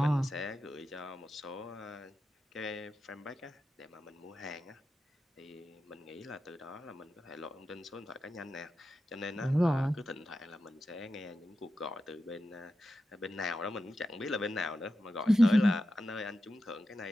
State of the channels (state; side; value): normal; both; correlation 0.90